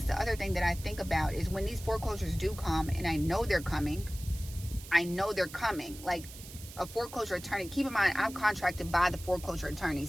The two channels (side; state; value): right; noise; hiss, 15 dB below the sound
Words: the other thing that I think about is when these foreclosures do come, and I know they're coming, like a foreclosure attorney. Keep in mind, I'm contracted by the foreclosure